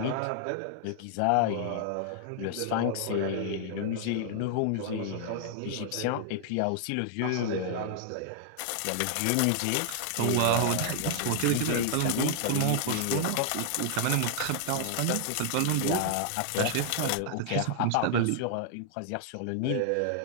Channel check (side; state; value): both; different; correlation -0.01